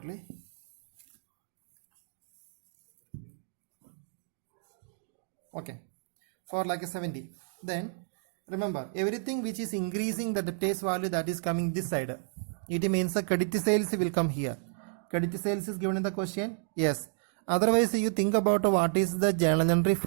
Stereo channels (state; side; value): silent; left; digital silence